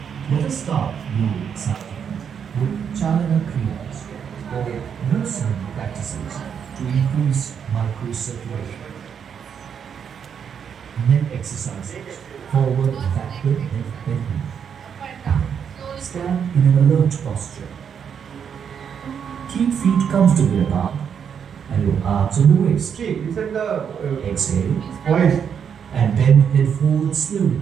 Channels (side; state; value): left; quieter; 7.5 dB